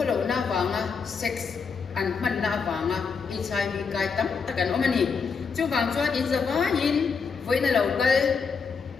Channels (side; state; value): right; quieter; 5.5 dB